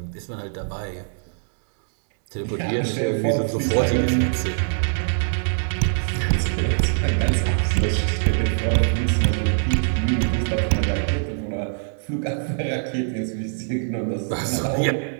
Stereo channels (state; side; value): silent; left; digital silence